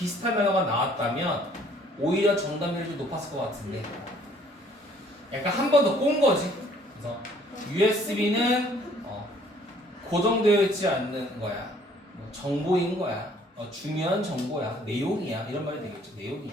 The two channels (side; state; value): both; normal; correlation 0.59